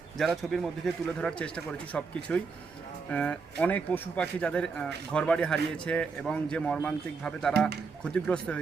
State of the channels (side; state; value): left; quieter; 4.9 dB